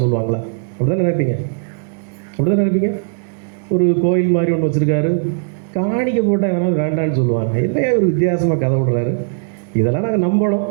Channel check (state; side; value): silent; left; digital silence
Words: சொல்லுவாங்களா? அப்படிதான் நினைப்பீங்க, அப்படிதான் நினைப்பீங்க. ஒரு கோயில் மாதிரி ஒன்று வச்சுருக்காரு, காணிக்கை போட்டால் யாராவது வேண்டான்னு சொல்லுவாங்க. என்னையா ஒரு வித்தியாசமாக கதை விடுறாரு, இதெல்லாம் நாங்கள் நம்பணும்,